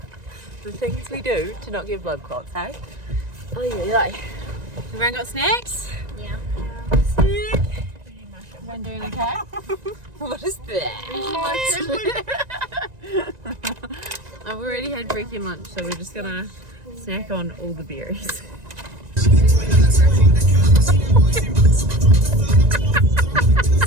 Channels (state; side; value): late; left; 1.9 ms